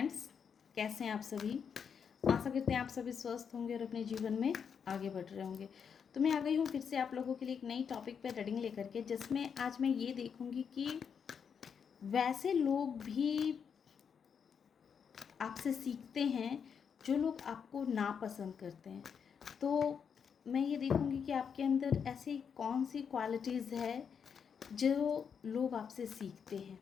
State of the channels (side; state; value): right; quieter; 6.9 dB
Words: कैसे हैं आप सभी। आशा करते हैं आप सभी स्वस्थ होंगे और अपने जीवन में आगे बढ़ रहे होंगे। तो मैं आ गई हूँ फिर से आप लोगों के लिए एक नई टॉपिक पे रीडिंग लेकर के, जिसमें आज मैं ये देखूँगी कि वैसे लोग भी आपसे सीखते हैं जो लोग आपको नापसंद करते हैं। तो मैं ये देखूँगी कि आपके अंदर ऐसी कौन सी क्वालिटीज़ है जो लोग आपसे सीखते हैं,